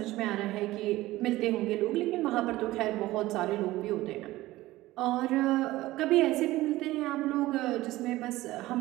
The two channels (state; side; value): quieter; left; 17.4 dB